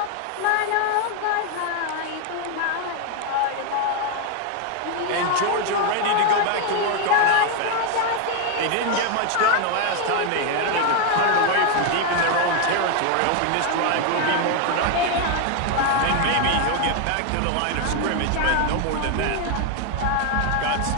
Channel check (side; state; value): both; different; correlation 0.01